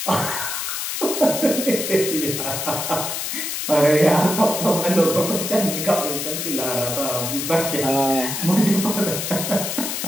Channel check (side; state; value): left; noise; hiss, 3 dB below the sound